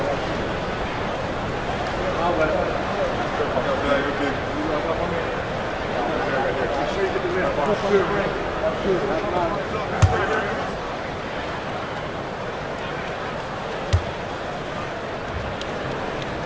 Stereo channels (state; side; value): identical; both; correlation 1.00